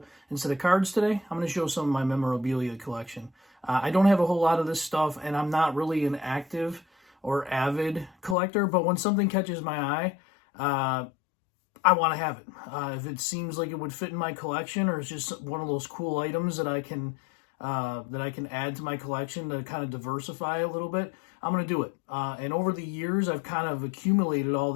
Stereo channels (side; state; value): right; drops out; at 8.3 s